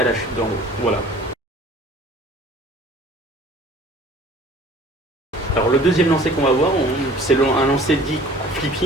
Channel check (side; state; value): both; normal; correlation 0.48